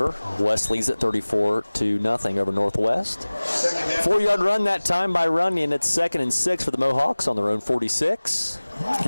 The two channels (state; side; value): inverted; both; correlation -1.00